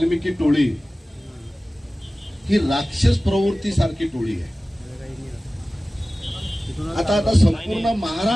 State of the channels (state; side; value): normal; both; correlation 0.97